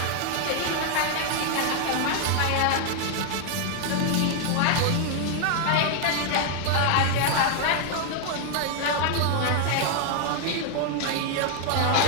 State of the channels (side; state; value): both; different; correlation 0.00